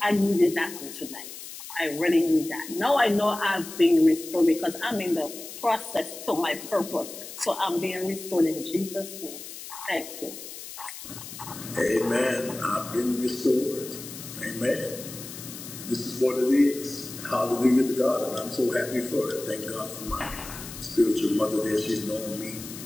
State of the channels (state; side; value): noise; left; hiss, 12 dB below the sound